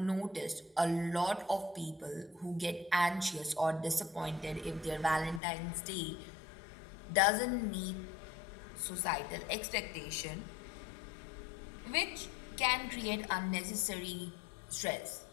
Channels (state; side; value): drops out; right; at 5.4 s